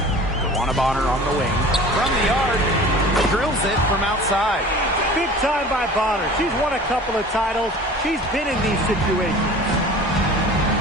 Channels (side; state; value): both; normal; correlation 0.42